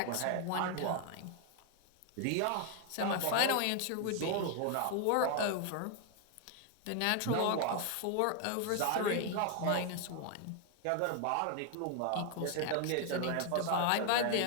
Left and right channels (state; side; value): different; both; correlation 0.00